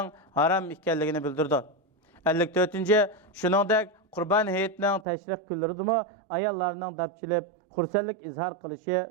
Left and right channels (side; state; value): left; drops out; at 5.1 s